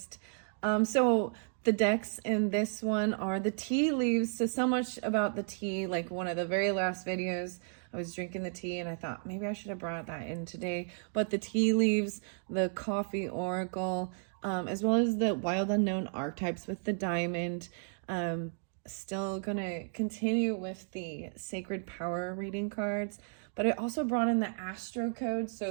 So the decks in this one are the tea leaves. So much about the tea, like one of the very last videos, I was drinking the tea and I thought maybe I should have brought that in today. But the tea leaves, the coffee oracle, as well as the wild unknown archetypes with the diamond. Still gonna continue with the sacred power reading cards, but I also brought in the astro codes,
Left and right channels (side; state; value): left; silent; 56 dB below the other